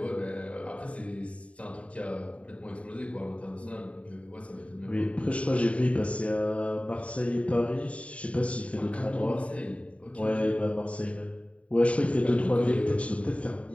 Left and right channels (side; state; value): right; late; 0.064 ms